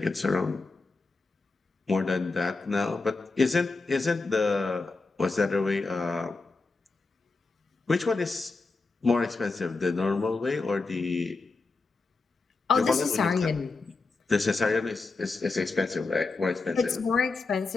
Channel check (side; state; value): right; quieter; 3.8 dB